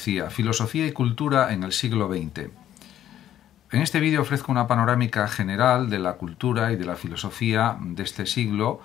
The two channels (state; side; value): quieter; right; 11.5 dB